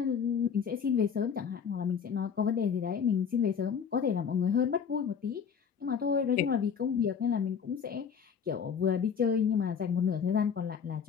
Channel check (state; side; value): quieter; right; 7.0 dB